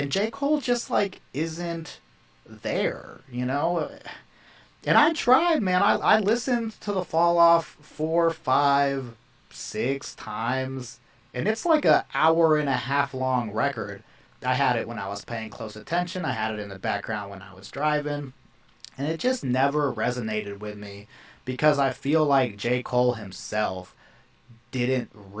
J. Cole just like isn't there, you know? And I tried, man. I listened to the Fall Off 4, 5, 6 times. And it's like an hour and a half long record. I had it when I was paying close attention. I had it in the background when I was driving. And it just never resonated with me because I feel like J. Cole himself didn't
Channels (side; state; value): both; identical; correlation 1.00